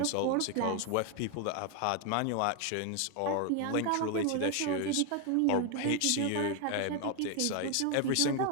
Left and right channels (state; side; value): different; both; correlation 0.01